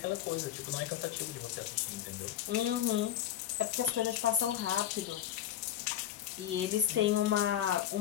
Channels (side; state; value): right; quieter; 11.4 dB